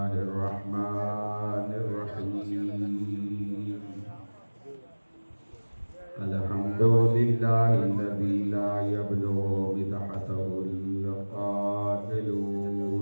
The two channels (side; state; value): both; inverted; correlation -1.00